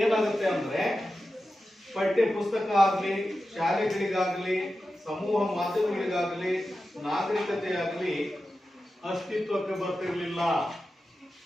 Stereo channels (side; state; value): both; normal; correlation 0.92